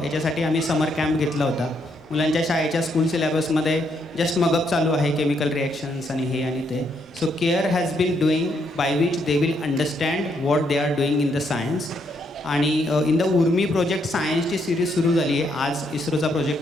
याच्यासाठी आम्ही समर कॅम्प घेतला होता. मुलांच्या शाळेच्या स्कूल सिलेबसमध्ये जस्ट मगअप चालू आहे, केमिकल रिॲक्शन्स आणि हे आणि ते. So care has been doing by which they will understand what they are doing in the science. आणि इन द उर्मी प्रोजेक्ट सायन्सची सिरीज सुरू झाली आहे. आज इस्रोचा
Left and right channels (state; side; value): normal; both; correlation 0.74